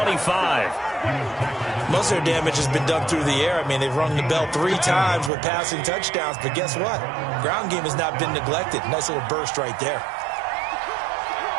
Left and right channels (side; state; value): left; drops out; at 5.3 s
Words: Most of their damage has been done through the air. I mean, they've rung the bell 3 times with passing touchdowns. But guess what? Ground game has not been neglected. Nice little burst right there.